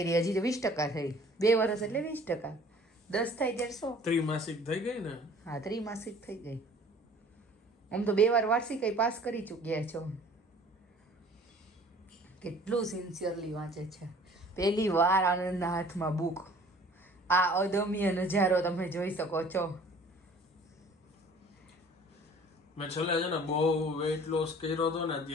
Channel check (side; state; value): both; normal; correlation 0.50